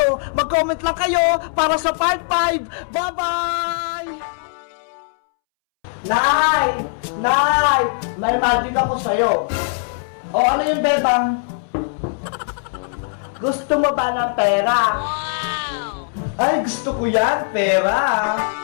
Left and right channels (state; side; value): silent; right; 66 dB below the other